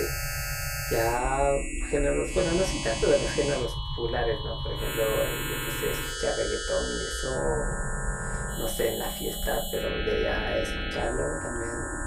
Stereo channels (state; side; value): identical; both; correlation 1.00